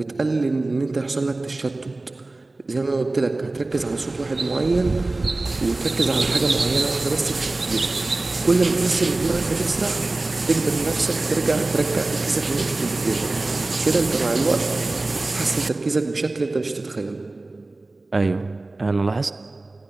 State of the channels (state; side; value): quieter; left; 3.1 dB